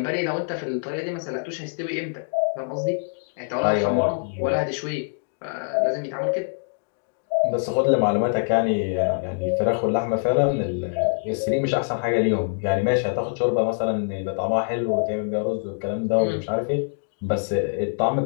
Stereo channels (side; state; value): right; silent; digital silence